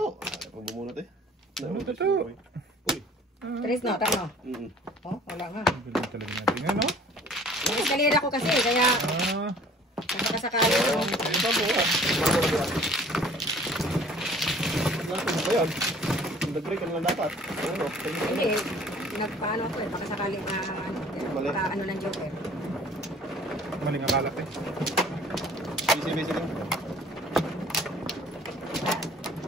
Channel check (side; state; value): both; normal; correlation 0.52